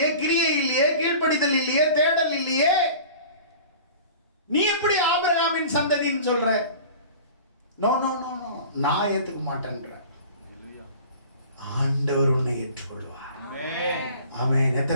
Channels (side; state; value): both; inverted; correlation -0.42